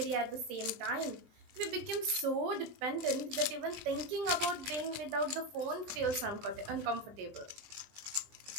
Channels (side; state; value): left; late; 20 ms